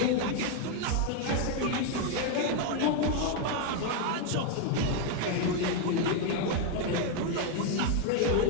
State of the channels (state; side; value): different; both; correlation 0.01